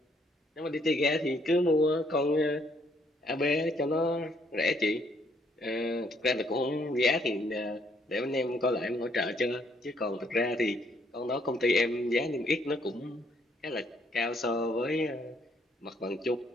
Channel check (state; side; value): normal; both; correlation 0.68